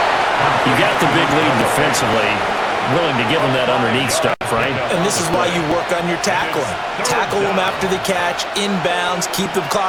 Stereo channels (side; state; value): both; identical; correlation 1.00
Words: You got the big lead defensively. Willing to give them that underneath stuff, right? And this is why you work on your tackling. Tackle them after the catch, inbounds, keep the